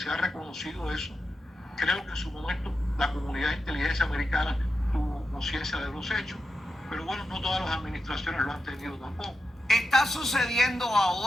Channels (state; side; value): normal; both; correlation 0.89